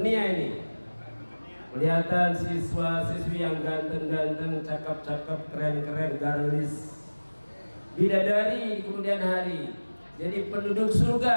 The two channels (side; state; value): both; inverted; correlation -1.00